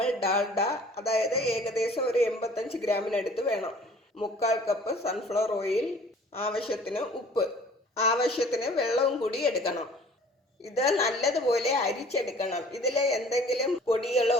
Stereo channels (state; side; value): normal; both; correlation 0.51